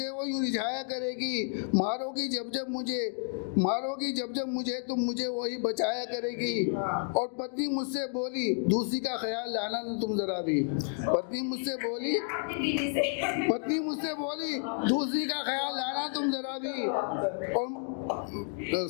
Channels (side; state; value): right; silent; 57 dB below the other